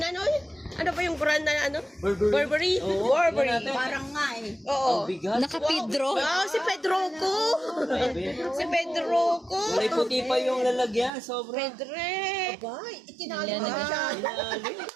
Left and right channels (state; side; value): drops out; left; at 11.1 s